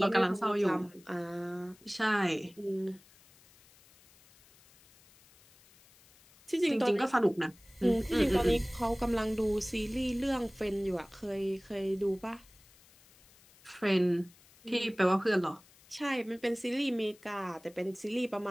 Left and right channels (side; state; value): left; noise; hiss, 27 dB below the sound